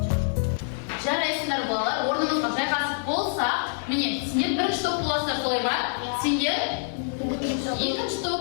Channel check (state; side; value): silent; right; digital silence